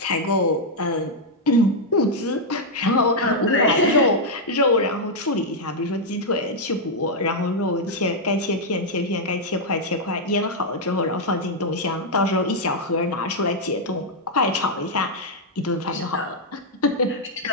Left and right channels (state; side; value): normal; both; correlation -0.03